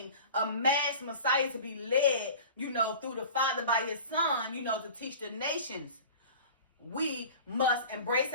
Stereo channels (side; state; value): both; inverted; correlation -0.39